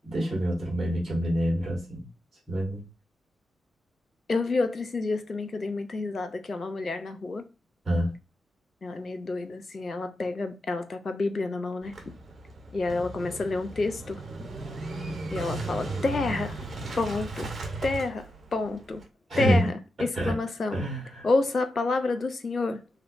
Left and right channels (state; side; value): normal; both; correlation 0.88